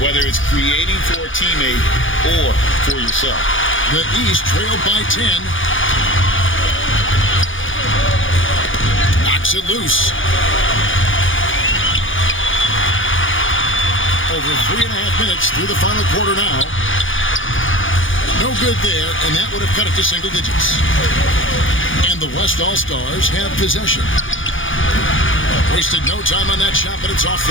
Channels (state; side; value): late; right; 0.57 ms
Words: whether it's creating for a teammate or for yourself. The East trailed by 10. Knocks it loose. Over 3.5 minutes through the final quarter now. No good there, and that would have cut it to single digits. And the West All-Stars have possession. Wasted no time on that shot, but it's off